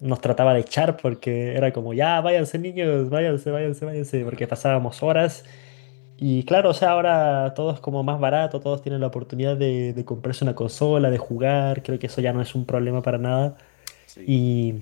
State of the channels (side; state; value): right; silent; 62 dB below the other